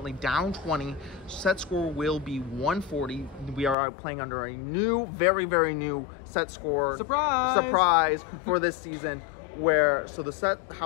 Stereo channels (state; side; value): drops out; right; at 3.8 s